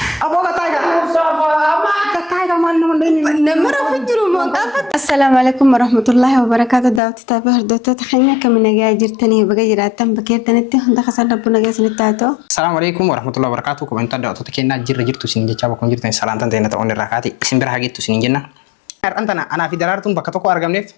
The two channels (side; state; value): right; drops out; at 7.0 s